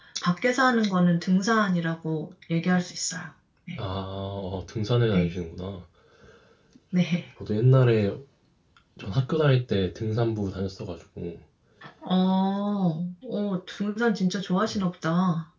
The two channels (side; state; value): both; identical; correlation 1.00